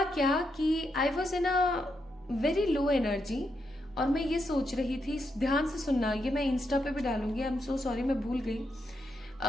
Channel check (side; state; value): both; normal; correlation 0.81